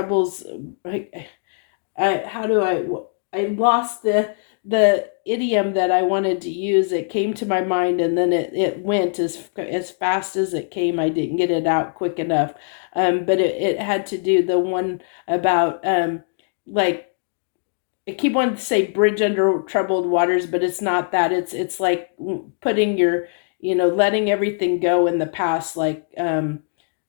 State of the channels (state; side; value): silent; right; digital silence